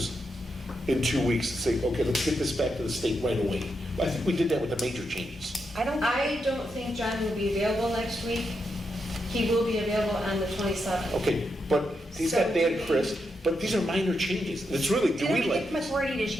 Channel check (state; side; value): normal; both; correlation 0.84